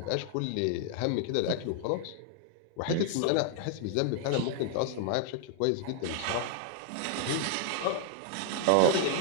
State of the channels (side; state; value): both; different; correlation 0.00